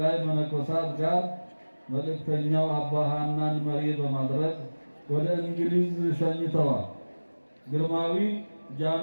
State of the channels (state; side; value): inverted; both; correlation -1.00